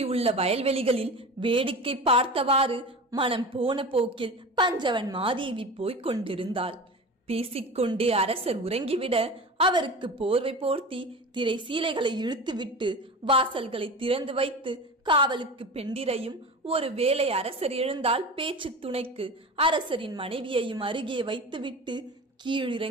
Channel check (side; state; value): both; normal; correlation 0.31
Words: உள்ள வயல்வெளிகளில் வேடிக்கை பார்த்தவாறு மனம் போன போக்கில் பஞ்சவன் மாதேவி போய்க் கொண்டிருந்தாள். பேசிக்கொண்டே அரசர் உறங்கிவிட அவருக்கு போர்வை போர்த்தி திரை சீலைகளை இழுத்துவிட்டு வாசல்களை திறந்து வைத்து காவலுக்கு பெண்டிரையும், ஒரு வேளை அரசர் எழுந்தால் பேச்சு துணைக்கு அரசரின் மனைவியையும் அருகே வைத்துவிட்டு